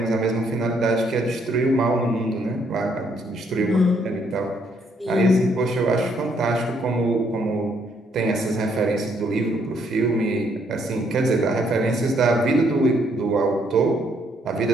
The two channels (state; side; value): normal; both; correlation 0.70